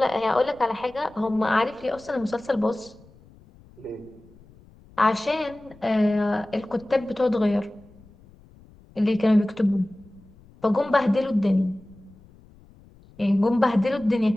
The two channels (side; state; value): left; noise; rumble, 25 dB below the sound